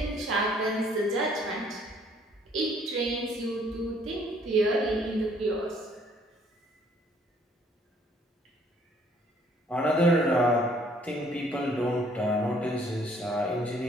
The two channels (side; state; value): both; normal; correlation 0.61